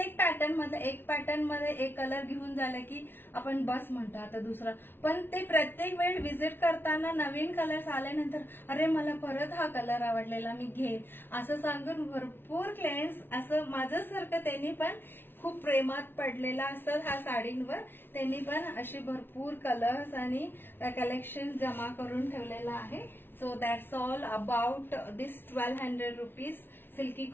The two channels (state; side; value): late; right; 0.10 ms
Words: पॅटर्न मध्ये एक पॅटर्न मध्ये एक कलर घेऊन झालं की आपण बस म्हणतो आता दुसरा. पण ते प्रत्येक वेळ व्हिजिट करताना नवीन कलर्स आल्यानंतर अरे मला परत हा कलर आवडलेला मी घेईन असं सांगून भरपूर क्लायंट्स असं माझ्यासारखं त्यांनी पण खूप प्रेमात पडलेला असतात ह्या साडींवर. त्यांनी पण असे भरपूर कलर्स आणि कलेक्शन जमा करून ठेवलेला आहे. So that's all about this 1200 rupees silky